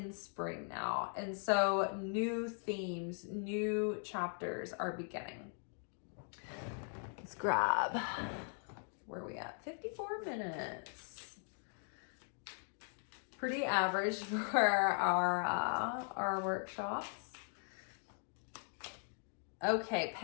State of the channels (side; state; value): right; silent; 51 dB below the other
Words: spring now. And so new themes, new chapters are beginning. Let's grab, where are we at? 54 minutes. Pretty average for our workshops. Okay,